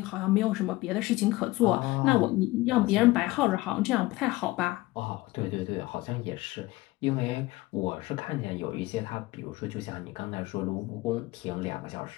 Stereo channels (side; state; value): right; quieter; 19.6 dB